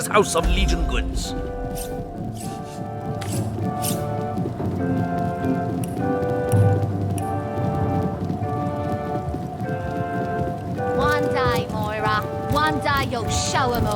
house of Legion goods. One day, Moira. One day you'll show 'em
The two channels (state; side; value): identical; both; correlation 1.00